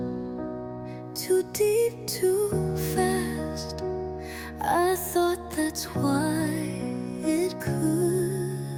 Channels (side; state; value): both; identical; correlation 1.00